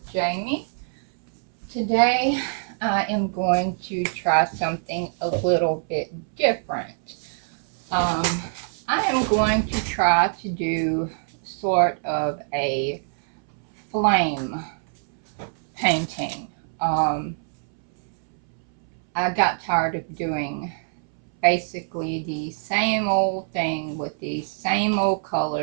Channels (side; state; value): left; silent; 62 dB below the other